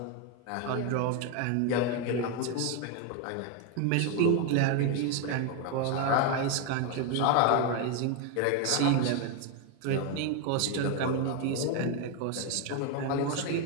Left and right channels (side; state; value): both; different; correlation 0.01